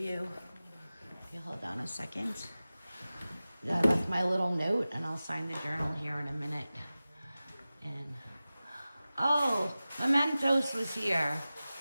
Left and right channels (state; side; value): inverted; both; correlation -0.97